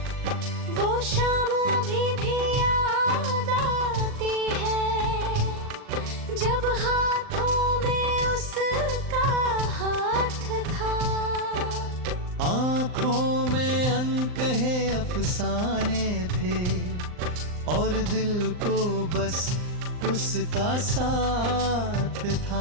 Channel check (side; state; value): left; late; 39 ms